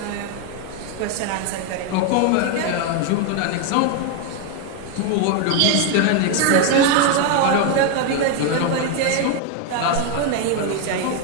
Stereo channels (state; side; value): different; both; correlation 0.01